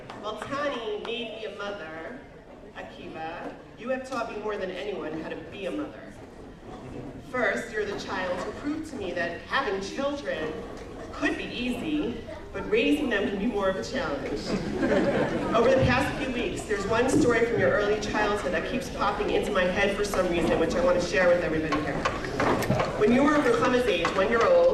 Well, Tani made me a mother, Akiva. You have taught me more than anyone how to be a mother. First, you're the child who proved to me that having children could be easy, but raising them can be more of a challenge. Over the past few weeks, there's one story from your early childhood that keeps popping into my head for some reason, which I want to share with everybody here. When you were Ruchama's age, 1 year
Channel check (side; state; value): both; identical; correlation 1.00